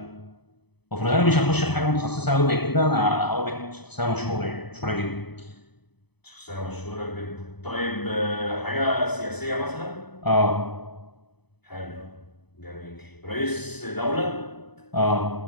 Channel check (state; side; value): late; right; 0.98 ms